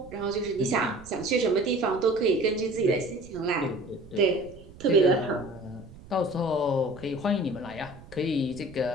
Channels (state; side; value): noise; right; rumble, 19 dB below the sound